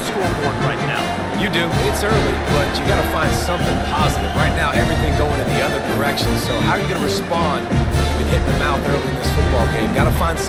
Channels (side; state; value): both; identical; correlation 1.00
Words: scoreboard right now. You do. It's early, but you got to find something positive. Right now, everything going in the other direction. So how are you going to respond? You've been hitting the mouth early in this football game. Got to find